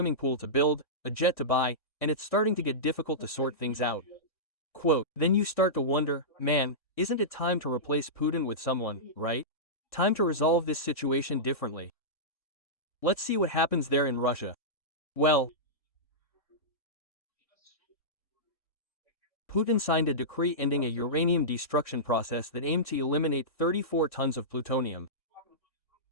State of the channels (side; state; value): right; late; 1.5 ms